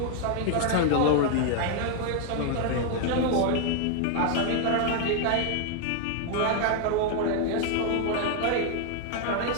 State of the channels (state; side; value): different; both; correlation 0.00